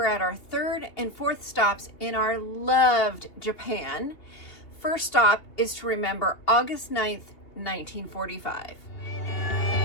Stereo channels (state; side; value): late; right; 2.8 ms